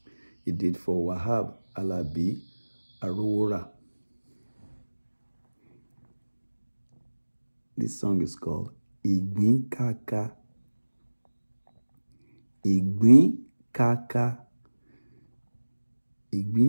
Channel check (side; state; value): both; inverted; correlation -1.00